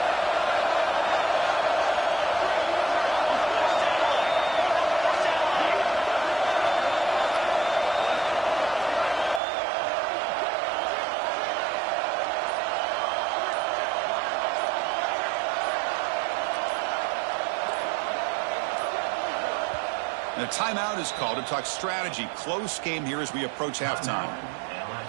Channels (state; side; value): drops out; left; at 9.4 s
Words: And a timeout is called to talk strategy. Close game here as we approach halftime.